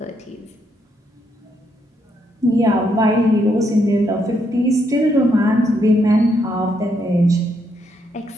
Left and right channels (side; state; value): both; normal; correlation 0.76